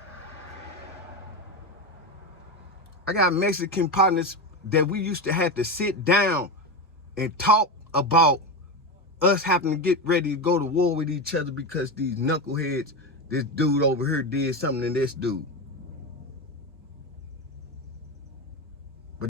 I got Mexican partners that we used to have to sit down and talk about us having to get ready to go to war with each other because these knuckleheads, this dude over here did something to this dude.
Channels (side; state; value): both; normal; correlation 0.17